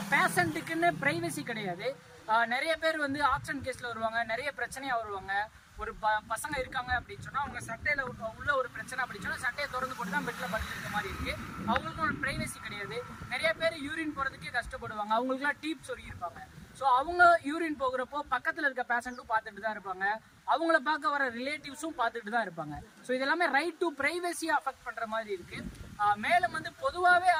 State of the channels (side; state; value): both; identical; correlation 1.00